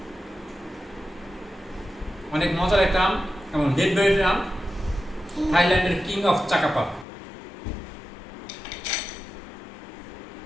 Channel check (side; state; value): right; drops out; at 7.1 s